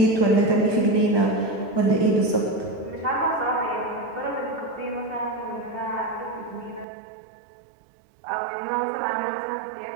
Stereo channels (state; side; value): drops out; left; at 6.9 s